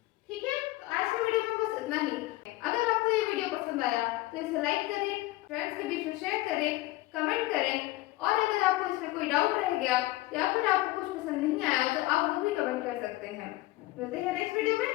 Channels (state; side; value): quieter; right; 18.6 dB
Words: ठीक है, तो आज की वीडियो में बस इतना ही। अगर आपको ये वीडियो पसंद आया तो इसे लाइक करें, फ्रेंड्स के बीच में शेयर करें, कमेंट करें, और अगर आपको इसमें कोई डाउट रह गया या फिर आपको कुछ पसंद नहीं आया तो आप वो भी कमेंट कर सकते हैं। मिलते हैं नेक्स्ट वीडियो में।